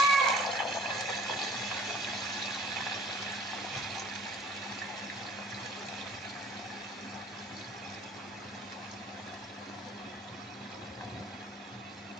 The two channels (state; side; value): normal; both; correlation 0.53